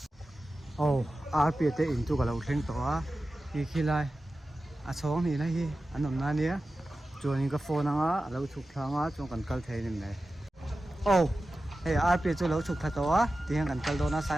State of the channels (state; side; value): normal; both; correlation 0.94